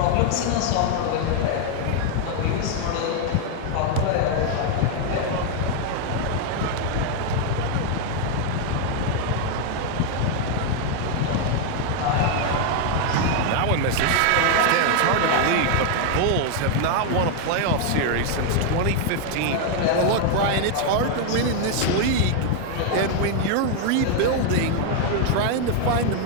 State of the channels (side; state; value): both; different; correlation 0.00